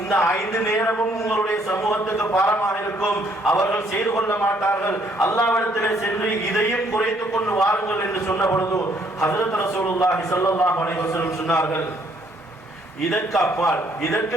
5 நேரமும் உங்களுடைய சமூகத்துக்கு பாரமாக இருக்கும், அவர்கள் செய்து கொள்ள மாட்டார்கள், அல்லாஹ்விடத்திலே சென்று இதையும் குறைத்துக் கொண்டு வாருங்கள் என்று சொன்ன பொழுது ஹஜ்ரத் ரசூலுல்லாஹி ஸல்லல்லாஹு அலைஹி வஸல்லம் சொன்னார்கள், இதற்கு அப்பால் இதற்கு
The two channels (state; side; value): normal; both; correlation 0.66